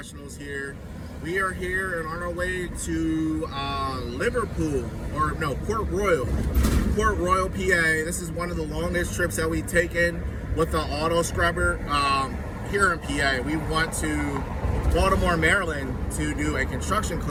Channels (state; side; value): identical; both; correlation 1.00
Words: here. We are here and on our way to Liverpool, or no, Port Royal, PA. This is one of the longest trips that we've taken with the auto scrubber here in PA. We went to Baltimore, Maryland to do a construction